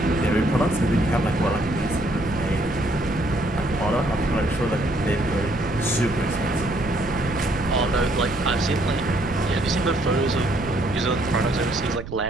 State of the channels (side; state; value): right; noise; rumble, 12 dB below the sound